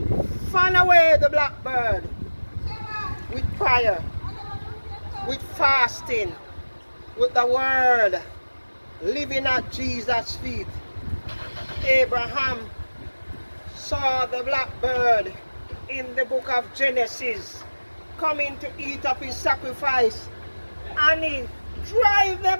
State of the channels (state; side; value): inverted; both; correlation -1.00